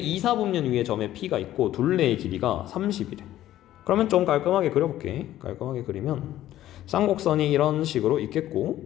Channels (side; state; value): right; quieter; 13.4 dB